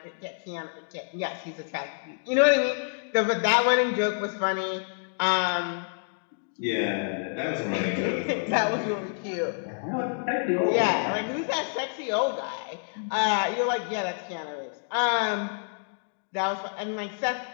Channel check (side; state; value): right; silent; digital silence